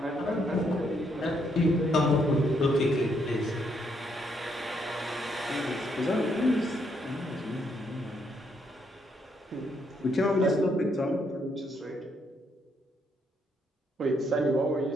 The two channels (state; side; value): normal; both; correlation 0.74